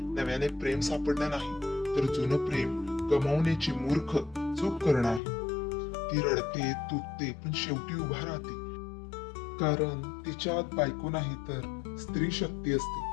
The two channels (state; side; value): drops out; right; at 5.2 s